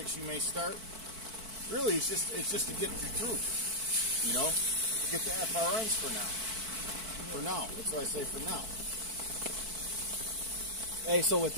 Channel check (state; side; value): late; left; 4.5 ms